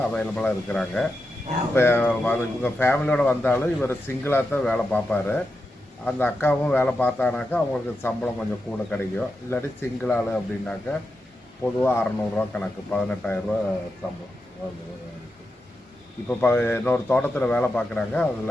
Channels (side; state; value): both; normal; correlation 0.88